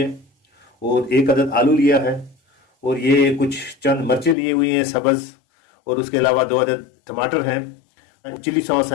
और एक अदद आलू लिया है और ये कुछ चंद मिर्चें ली हुई हैं सब्ज़, और उसके अलावा 2 अदद टमाटर हैं, चिली सॉस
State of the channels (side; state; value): right; drops out; at 4.4 s